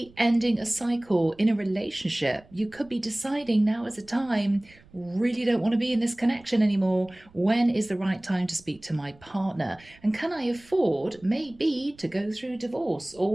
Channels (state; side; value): noise; right; rumble, 27 dB below the sound